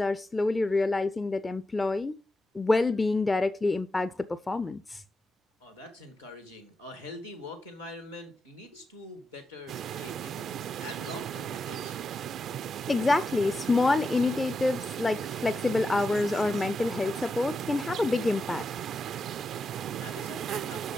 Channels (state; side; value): normal; both; correlation 0.88